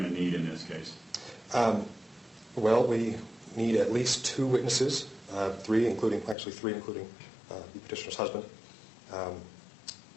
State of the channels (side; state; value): right; drops out; at 6.4 s